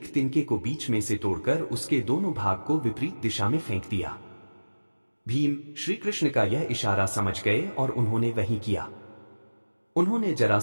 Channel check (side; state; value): both; inverted; correlation -1.00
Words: तिनके को बीच में से तोड़कर उसके दोनों भाग को विपरीत दिशा में फेंक दिया। भीम श्री कृष्ण का यह इशारा समझ गए और उन्होंने वही किया। उन्होंने